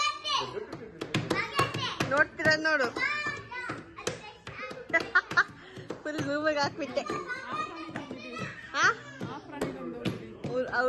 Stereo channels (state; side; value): identical; both; correlation 1.00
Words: ನೋಡ್ತೀರ ನೋಡು, ಫುಲ್ ರೂಮಿಗೆ ಹಾಕ್ಬಿಟ್ಟೆ.